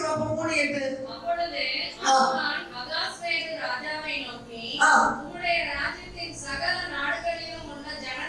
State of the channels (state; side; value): identical; both; correlation 1.00